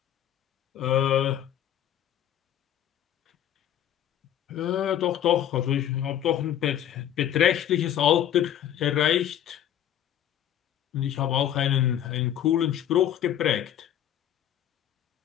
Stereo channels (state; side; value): quieter; right; 10.8 dB